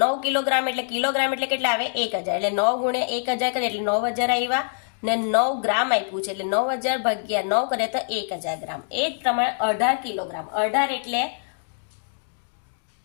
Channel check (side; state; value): right; silent; digital silence